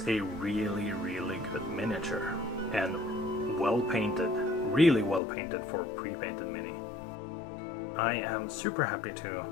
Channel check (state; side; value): drops out; right; at 5.2 s